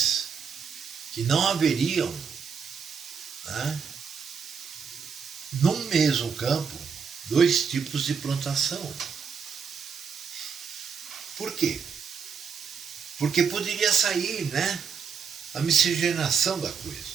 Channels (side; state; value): left; quieter; 6.3 dB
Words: que não haveriam, né, num mesmo campo, dois tipos de plantação. Por quê? Porque poderia sair, né, a miscigenação da